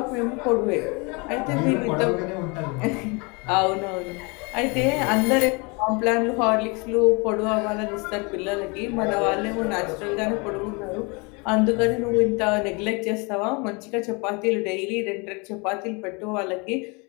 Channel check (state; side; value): quieter; right; 29.7 dB